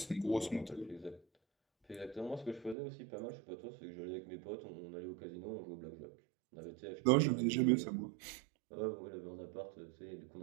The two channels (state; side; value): drops out; left; at 2.8 s